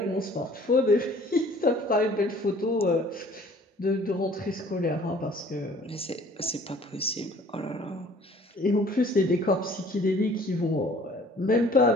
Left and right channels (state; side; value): normal; both; correlation 0.53